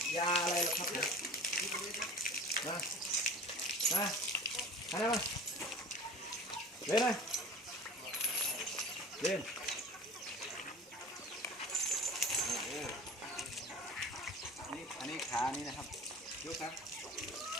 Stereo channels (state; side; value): normal; both; correlation 0.40